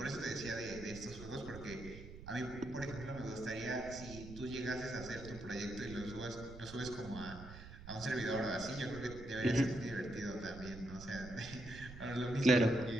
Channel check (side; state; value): right; noise; rumble, 13 dB below the sound